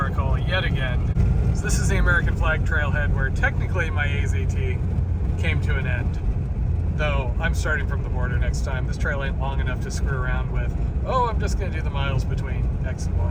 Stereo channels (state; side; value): identical; both; correlation 1.00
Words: yet again. So this is the American flag trailhead where technically my AZT came to an end. Though I'm starting from the border next time. This trail ain't long enough to screw around with, oh, I'm just gonna do the miles between X and